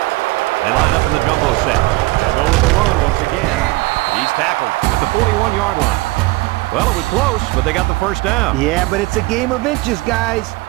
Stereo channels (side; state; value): left; quieter; 21.7 dB